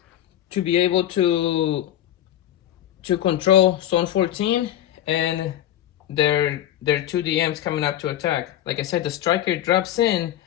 control zone 14 and their 2 DMs coming up to attack. Like I said, the striker drops in,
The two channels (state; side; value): quieter; right; 12.0 dB